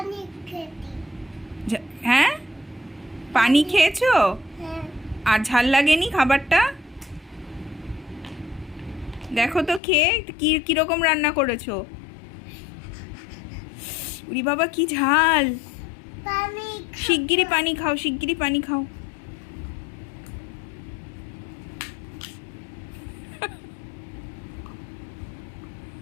হ্যাঁ, পানি খেয়েছো? আর ঝাল লাগেনি খাবারটা? দেখো তো খেয়ে কিরকম রান্না করেছো। উরি বাবা, কি ঝাল! শিগগিরই পানি খাও, শিগগিরই পানি খাও।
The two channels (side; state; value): right; drops out; at 9.8 s